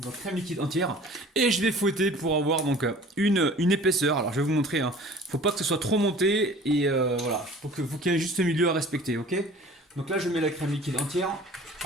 et je vais fouetter pour avoir donc une épaisseur. Alors je vais vous montrer, hein. Faut pas que ce soit trop monté et voilà, faut qu'il y ait un juste milieu à respecter, ok? Donc là je mets la crème liquide entière.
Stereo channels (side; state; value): both; normal; correlation 0.46